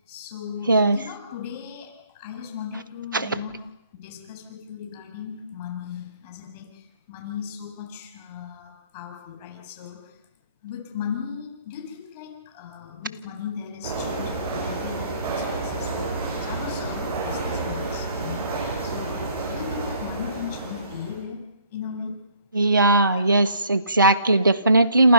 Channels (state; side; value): inverted; both; correlation -0.61